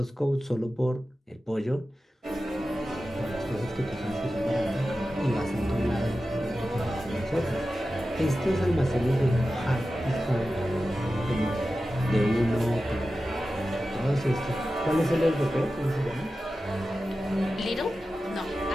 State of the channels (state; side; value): normal; both; correlation 0.93